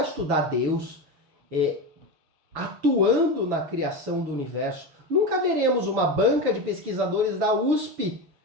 estudar Deus atuando na criação do universo. Nunca veremos uma banca de pesquisadores da USP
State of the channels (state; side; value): late; left; 6.8 ms